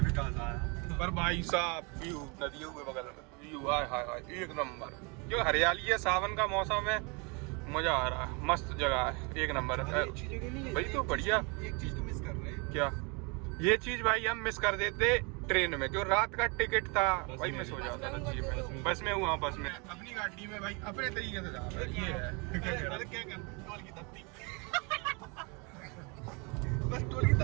विकास आया। पर भाई साहब व्यू नदियों के बगल में व्यू, हाय हाय हाय एक नंबर। जो हरियाली है, सावन का मौसम है, मजा आ रहा है, मस्त जगह है, एक नंबर है भाई। तो बढ़िया, एक चीज तो मिस कर रहे हैं। क्या? ये चीज भाई हम मिस कर देते ट्रेन में, जो रात का टिकट था भाई मिस हो जाता था। बस में हुआ, बस में अपनी गाड़ी में भाई अपने तरीके से जा रहा है। ये है क्या कर टोल की तत्ती बस टोल की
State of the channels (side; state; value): left; quieter; 31.0 dB